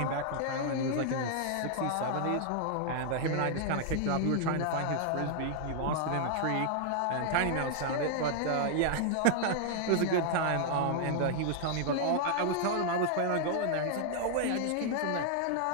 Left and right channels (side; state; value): both; different; correlation 0.00